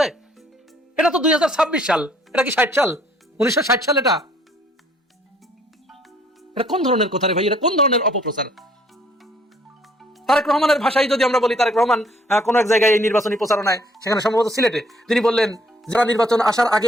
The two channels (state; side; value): normal; both; correlation 0.63